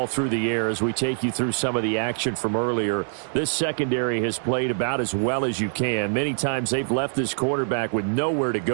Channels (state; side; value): silent; left; digital silence